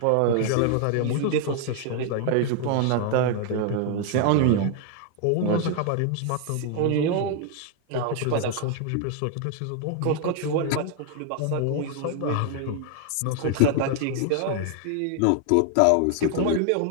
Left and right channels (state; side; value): different; both; correlation 0.00